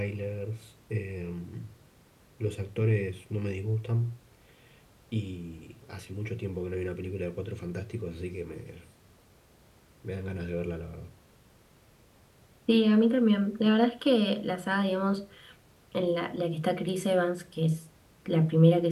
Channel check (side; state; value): both; identical; correlation 1.00